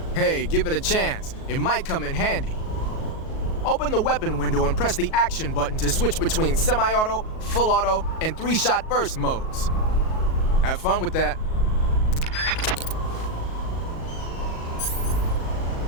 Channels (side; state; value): right; late; 38 ms